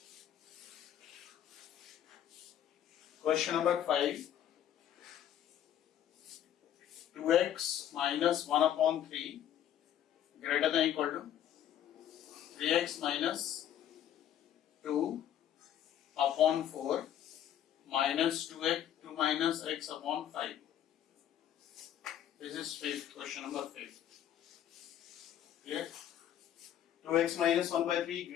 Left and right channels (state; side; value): quieter; right; 10.7 dB